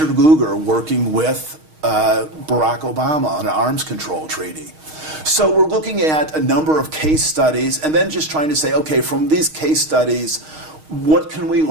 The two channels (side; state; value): left; late; 6.4 ms